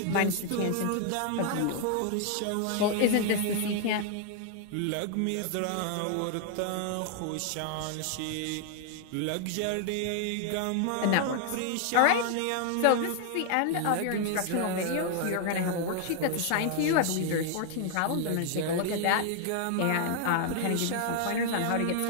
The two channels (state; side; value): different; both; correlation 0.00